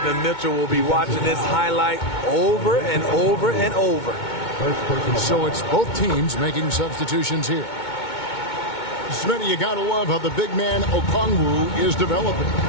Mitchell will be watching this highlight over and over and over. So it's both teams making substitutions here. Smitty, you got to love how the big man Okongwu is developing.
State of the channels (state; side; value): late; right; 2.2 ms